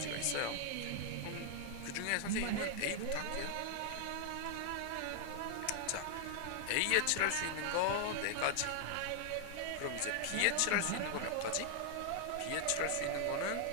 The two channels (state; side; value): different; both; correlation 0.00